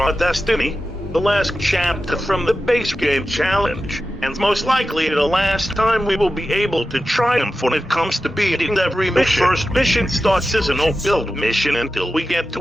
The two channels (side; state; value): both; normal; correlation 0.92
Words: destiny, the last chapter from the base game challenge, and most likely the last time we will be able to triumph when it comes to beating every mission. The first mission starts as a no-build mission until we get